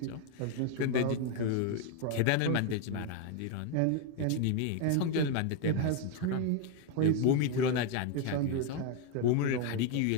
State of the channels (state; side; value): different; both; correlation 0.01